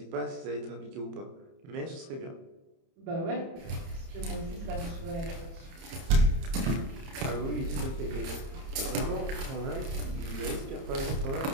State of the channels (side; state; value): left; late; 30 ms